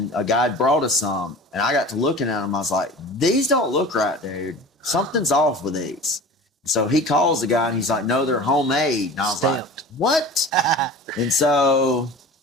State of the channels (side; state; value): both; normal; correlation 0.38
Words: a guy brought us some, and I got to looking at them. I was like, these don't look right, dude. Something's off with these. So he calls the guy and he's like, no, they're homemade. And I was like, what? And so